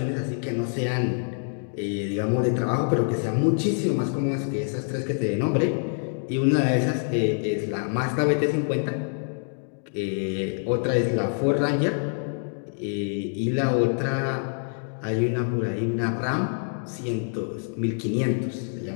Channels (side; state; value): right; silent; digital silence